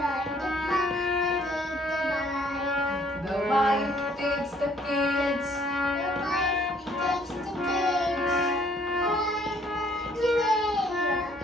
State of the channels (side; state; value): both; normal; correlation 0.63